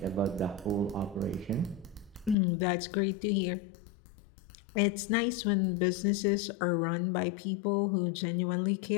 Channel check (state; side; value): drops out; right; at 2.4 s